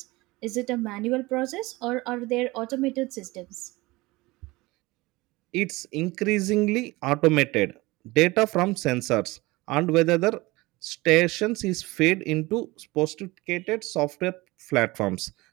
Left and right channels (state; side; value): quieter; left; 21.6 dB